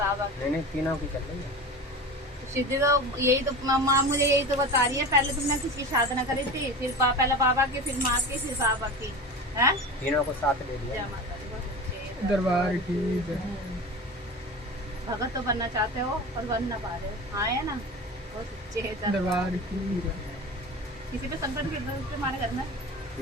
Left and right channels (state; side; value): normal; both; correlation 0.31